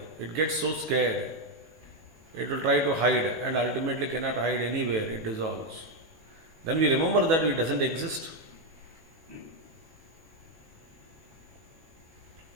It gets so scared. It will try to hide and ultimately cannot hide anywhere. It dissolves. Then we remember that it doesn't exist.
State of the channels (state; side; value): late; left; 18 ms